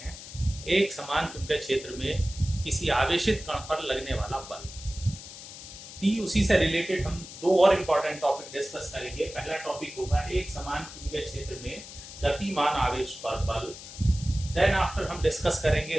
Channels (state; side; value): noise; left; hiss, 14 dB below the sound